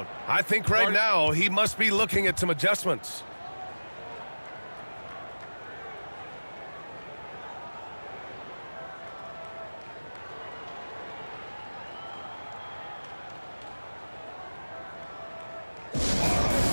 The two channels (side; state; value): both; inverted; correlation -1.00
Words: I think right now he must be looking at some adjustments.